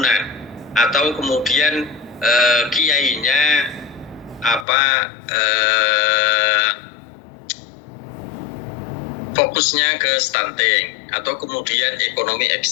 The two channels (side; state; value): right; drops out; at 4.7 s